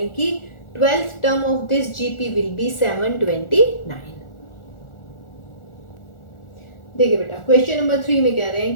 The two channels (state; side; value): late; right; 1.4 ms